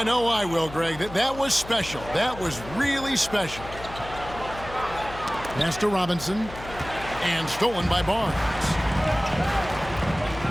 know I will, Greg. That was special. That was really special. Pass to Robinson, and stolen by Barnes.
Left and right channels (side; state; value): left; noise; hum, 14 dB below the sound